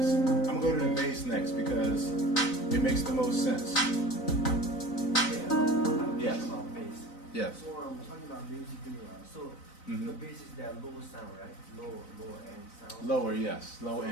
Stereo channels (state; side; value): late; right; 4.0 ms